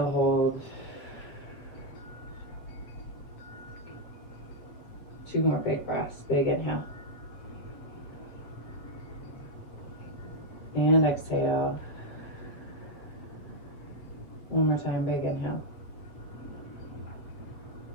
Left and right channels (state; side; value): late; right; 7.7 ms